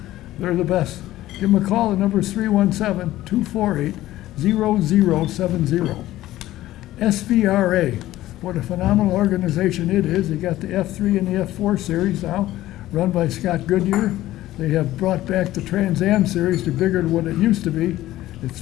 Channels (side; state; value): right; quieter; 15.2 dB